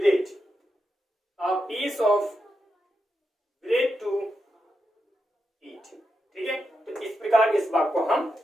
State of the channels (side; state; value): both; normal; correlation 0.86